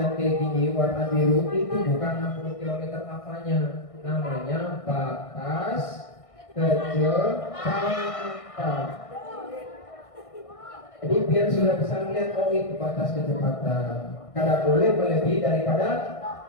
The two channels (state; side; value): late; right; 1.6 ms